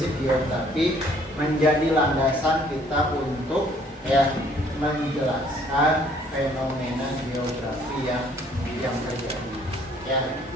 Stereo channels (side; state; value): both; normal; correlation 0.61